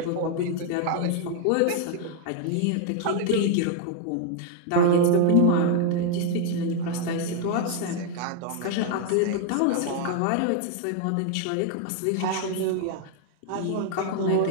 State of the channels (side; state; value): both; different; correlation 0.00